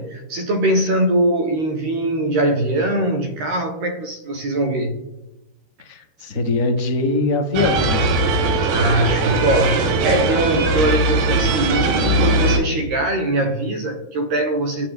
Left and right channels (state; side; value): late; left; 13 ms